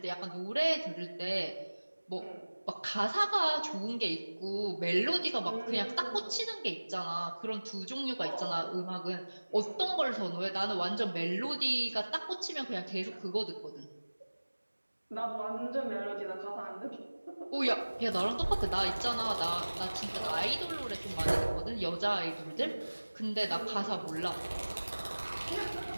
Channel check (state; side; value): inverted; both; correlation -1.00